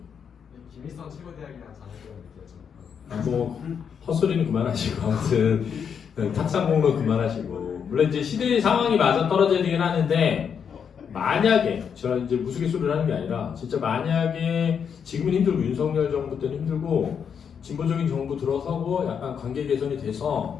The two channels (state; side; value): quieter; right; 7.2 dB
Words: 김일성 최고대학이랑 자녀들은 느껴져. 뭐 헛소리는 그만하시고 아무튼 탁상 공론 그만하시고 물론 이제 시대의 상황이 맞아 떨어져야 되긴 하는데 만약에 제가 이제 무스갯소리를 하는 게 아니라 진짜 만약에 지금은 힘들고 윤석열 정부 때는 힘들고 진보적인 정부 들어서고 약간 관계 개선이